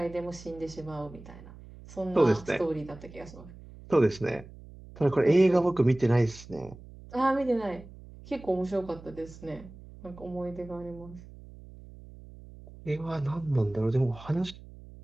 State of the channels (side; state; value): right; noise; hum, 18 dB below the sound